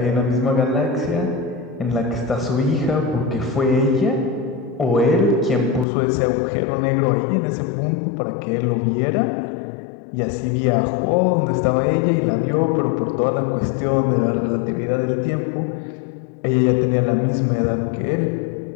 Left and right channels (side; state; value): right; drops out; at 5.9 s